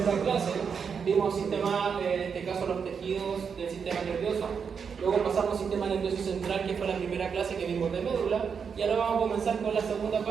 clase. Vimos sistema, en este caso los tejidos del sistema nervioso. Luego pasamos al sistema nervioso central, que fue la primera clase que vimos de médula. Y ahora vamos a comenzar con la segunda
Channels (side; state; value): left; quieter; 6.4 dB